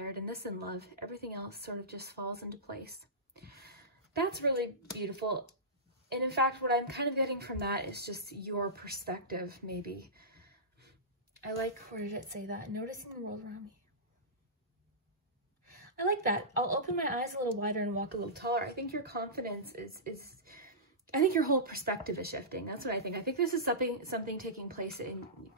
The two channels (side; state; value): both; normal; correlation -0.19